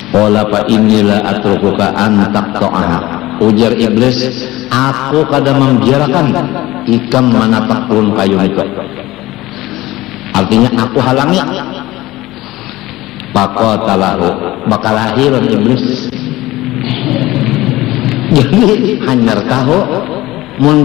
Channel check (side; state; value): right; quieter; 17.9 dB